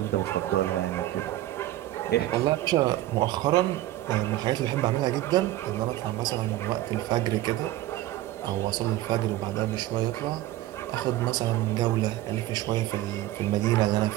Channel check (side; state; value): left; quieter; 15.2 dB